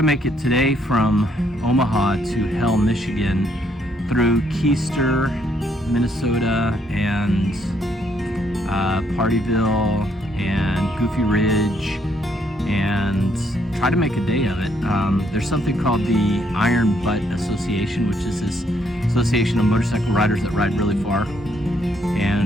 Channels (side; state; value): both; normal; correlation 0.71